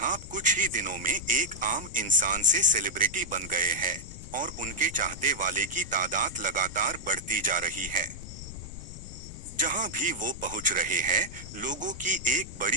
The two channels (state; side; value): noise; left; rumble, 13 dB below the sound